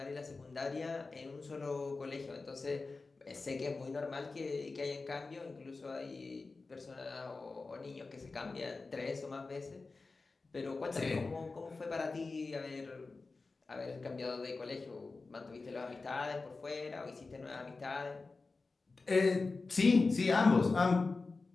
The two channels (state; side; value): quieter; right; 3.9 dB